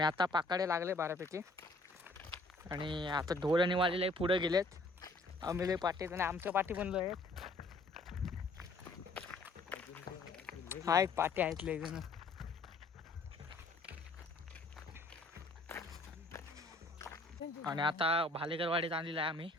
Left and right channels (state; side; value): quieter; right; 3.1 dB